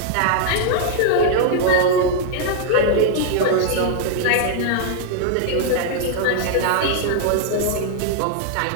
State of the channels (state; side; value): different; both; correlation -0.01